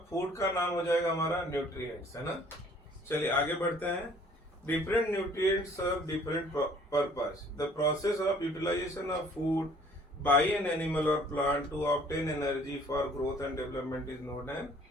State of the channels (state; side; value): normal; both; correlation 0.56